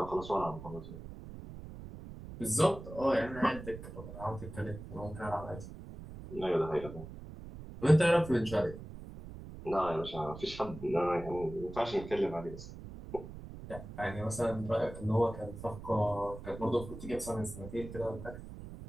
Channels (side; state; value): right; noise; rumble, 12 dB below the sound